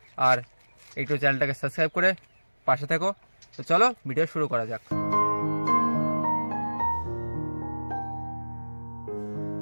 আর একটু চ্যানেলটাকে সাবস্ক্রাইব করে পাশে থেকো। তো চলো ভিডিও শুরু করা যাক।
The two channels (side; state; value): both; inverted; correlation -1.00